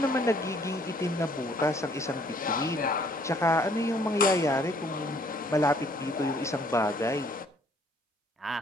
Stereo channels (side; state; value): both; normal; correlation 0.62